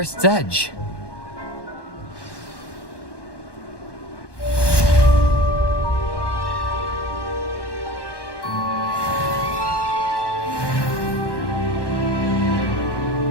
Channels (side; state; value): right; late; 1.1 ms